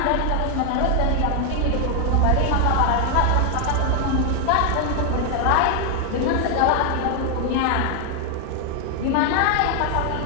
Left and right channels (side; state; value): both; different; correlation 0.00